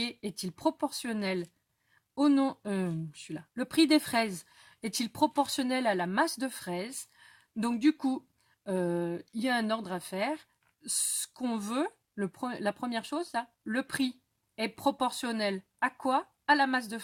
est-il proportionnel au nom, le prix des fraises est-il proportionnel à la masse de fraises? Donc du coup, il y a un ordre à faire. Ce qu'on veut, la première chose, là, le prix est proportionnel à quoi? à la masse de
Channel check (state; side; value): identical; both; correlation 1.00